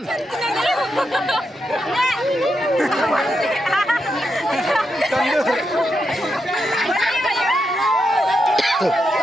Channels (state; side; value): normal; both; correlation 0.84